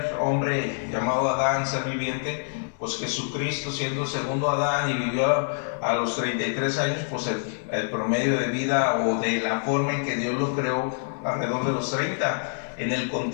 hombre llamado Adán, ser viviente, pues Jesucristo siendo el segundo Adán y vivió a los 33 años, pues el promedio de vida o de la forma en que Dios lo creó alrededor de los 30, en el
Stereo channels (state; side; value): silent; right; digital silence